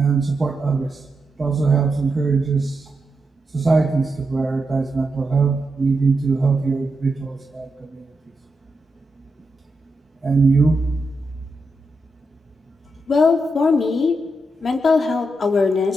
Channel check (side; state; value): both; normal; correlation 0.85